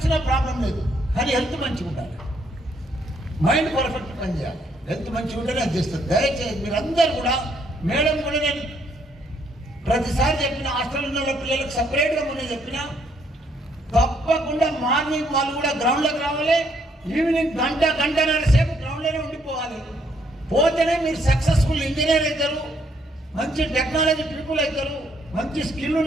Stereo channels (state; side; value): normal; both; correlation 0.70